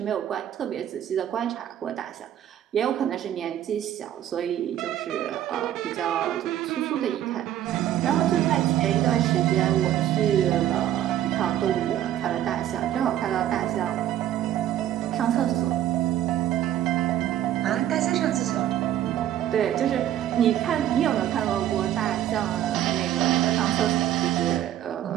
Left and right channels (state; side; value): quieter; left; 11.7 dB